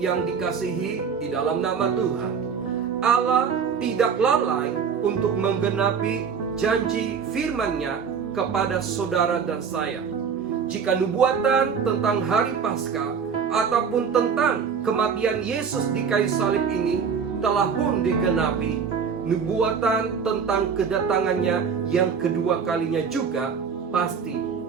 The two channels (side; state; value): left; quieter; 6.4 dB